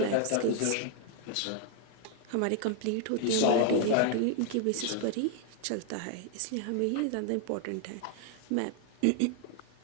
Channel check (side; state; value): both; different; correlation 0.00